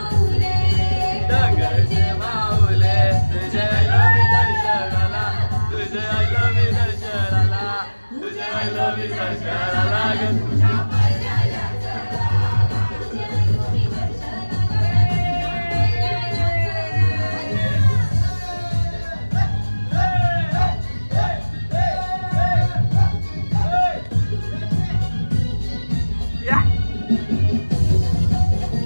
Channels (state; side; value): inverted; both; correlation -1.00